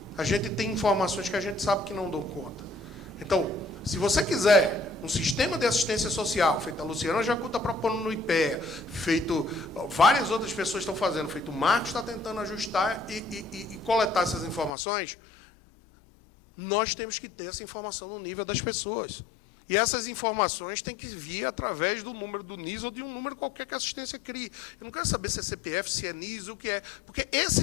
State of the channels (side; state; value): right; drops out; at 14.7 s